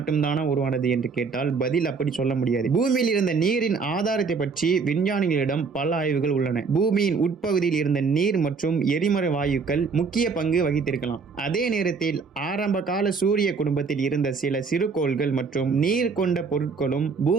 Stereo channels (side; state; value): left; quieter; 5.0 dB